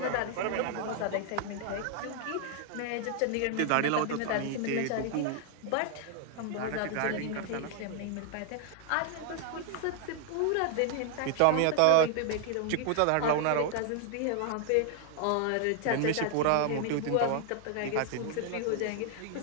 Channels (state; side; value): different; both; correlation 0.00